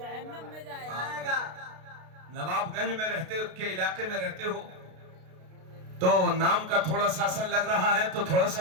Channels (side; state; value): left; late; 32 ms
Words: آئے گا نواب گنج میں رہتے کے علاقے میں رہتے ہو تو نام کا تھوڑا سا اثر لگ رہا ہے تو تھوڑا